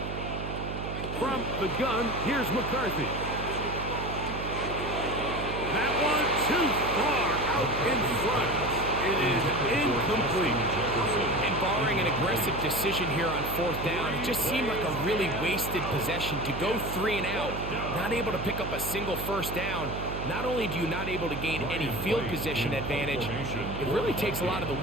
From the gun, here's McCarthy. That one too far out in front. It is incomplete. And barring an aggressive decision here on fourth down, it just seemed like a really wasted possession to go 3 and out, not able to pick up a single first down. Not only do you not able to gain any field position advantage, it really takes a lot of the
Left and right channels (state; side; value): noise; right; hum, 5 dB below the sound